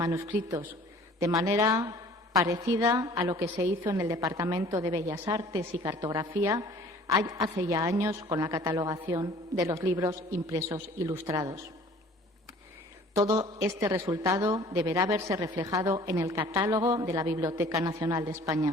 de manera parecida a lo que se hizo en el Departamento de Bellas Artes y Cartografía hace ya años con la catalogación de los libros impresos ilustrados. Todo este resultado deberá verse reflejado en el catálogo de la Biblioteca Nacional de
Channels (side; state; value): both; normal; correlation 0.50